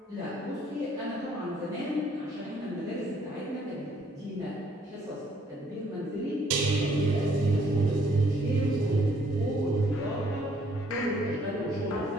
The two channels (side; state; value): both; normal; correlation 0.64